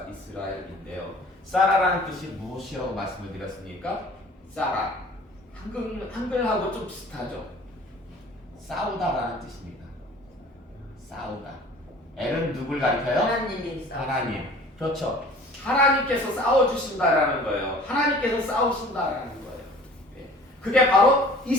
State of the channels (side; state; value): both; normal; correlation 0.47